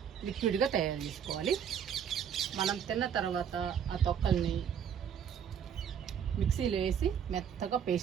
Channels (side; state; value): left; quieter; 8.2 dB